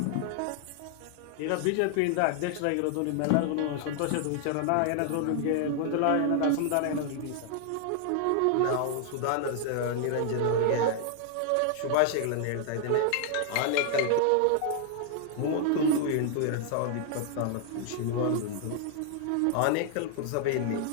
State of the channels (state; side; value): different; both; correlation 0.00